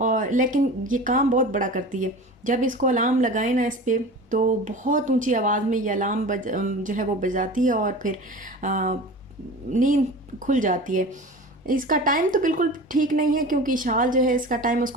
लेकिन ये काम बहुत बड़ा करती है। जब इसको अलार्म लगाए ना इस पे, तो बहुत ऊंची आवाज़ में ये अलार्म जो है वो बजाती है और फिर नींद खुल जाती है। इसका टाइम तो बिल्कुल ठीक नहीं है, क्योंकि शाल जो है इसका टाइम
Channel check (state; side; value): normal; both; correlation 0.35